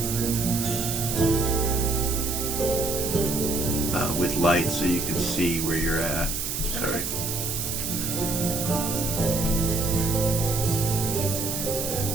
with light. light so you can see where you're at. Sorry.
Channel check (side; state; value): right; noise; hiss, 3 dB below the sound